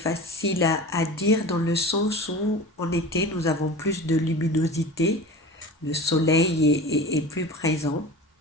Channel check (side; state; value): both; normal; correlation 0.35